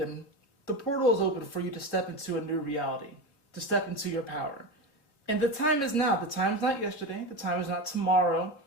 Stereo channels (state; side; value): late; right; 3.5 ms